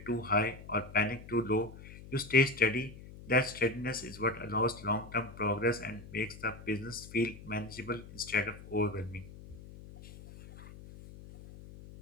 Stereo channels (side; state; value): left; noise; hum, 16 dB below the sound